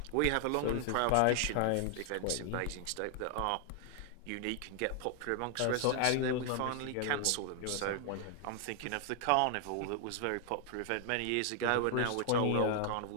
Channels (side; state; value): both; different; correlation 0.00